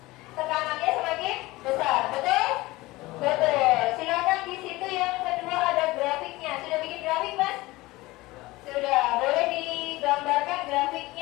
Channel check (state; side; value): quieter; right; 20.0 dB